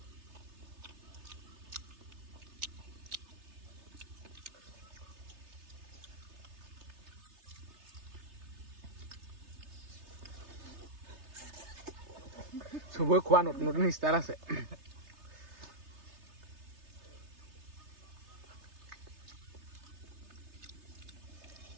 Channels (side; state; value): left; late; 3.3 ms